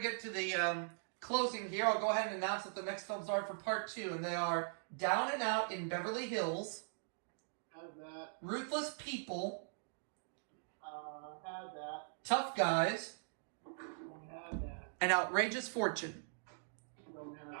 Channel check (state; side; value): silent; left; digital silence